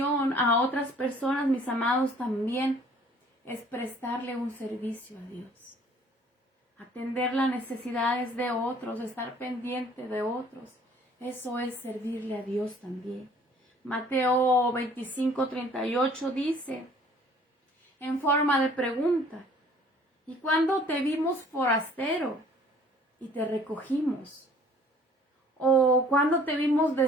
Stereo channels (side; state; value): both; normal; correlation 0.55